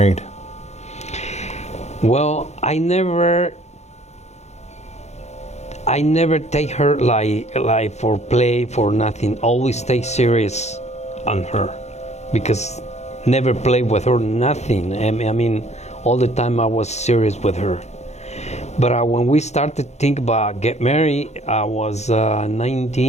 Well, I never take her like for play, for nothing. Always stay serious on her, because never play with her, nothing. I mean, all the time I was serious with her. But when we started to think about get married, I was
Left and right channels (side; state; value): right; late; 0.32 ms